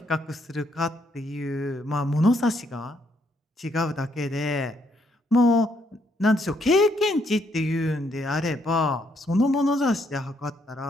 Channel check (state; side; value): normal; both; correlation 0.72